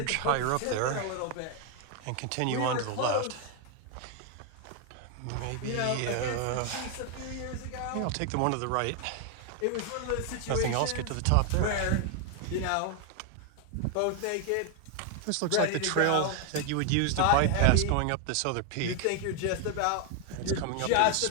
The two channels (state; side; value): different; both; correlation 0.00